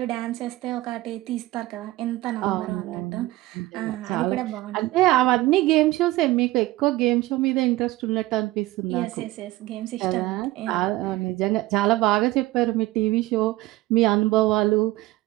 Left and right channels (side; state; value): left; quieter; 18.0 dB